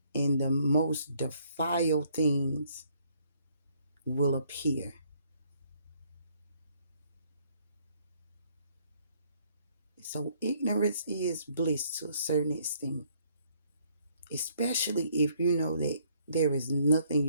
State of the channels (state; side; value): inverted; both; correlation -0.66